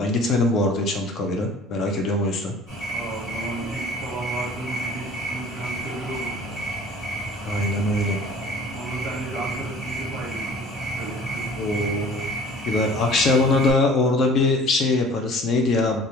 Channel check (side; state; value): both; normal; correlation 0.47